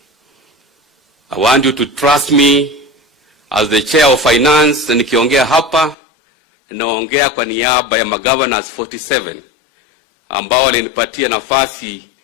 I want you to trust me as the chair of finance, na nikiongea hapa naongea kwa niaba ya magovernors 47 ambao walinipatia nafasi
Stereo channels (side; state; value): right; drops out; at 6.0 s